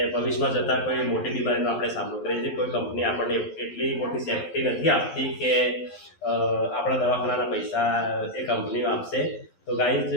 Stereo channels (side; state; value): right; late; 12 ms